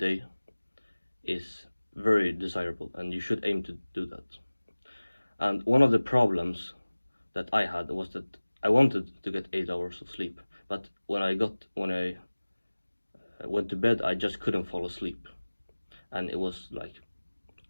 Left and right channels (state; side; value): inverted; both; correlation -1.00